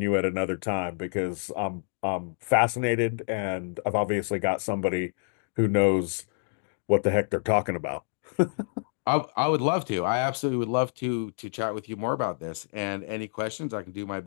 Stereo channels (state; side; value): silent; right; digital silence